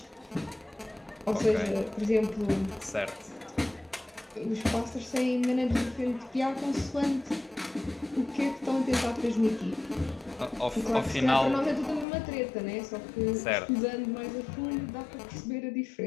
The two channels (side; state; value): right; drops out; at 12.1 s